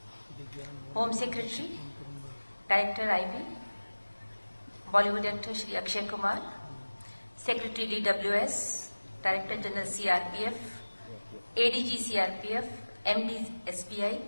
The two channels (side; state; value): both; inverted; correlation -1.00